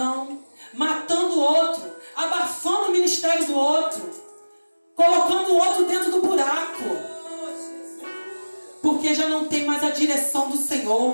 matando o outro, abafando o ministério do outro, colocando o outro dentro do buraco, porque já não tem mais a direção do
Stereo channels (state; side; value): inverted; both; correlation -1.00